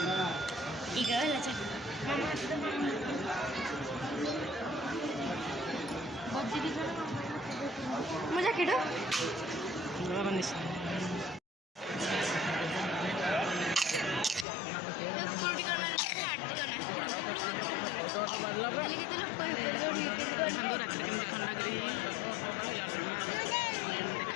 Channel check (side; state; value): right; drops out; at 14.5 s